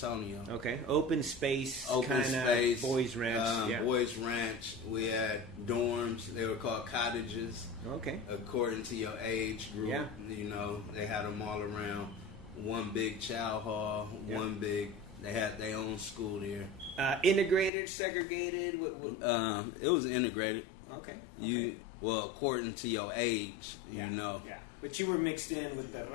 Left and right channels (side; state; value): right; drops out; at 17.7 s